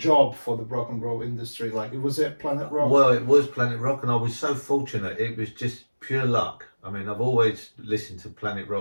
for the rock and roll industry? Like, was it Planet Rock? Well, it was Planet Rock, and I was so fortunate. It was just pure luck. I mean, I've always listened to Planet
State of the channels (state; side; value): inverted; both; correlation -1.00